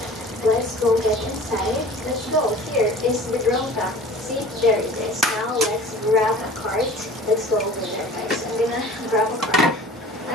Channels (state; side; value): normal; both; correlation 0.43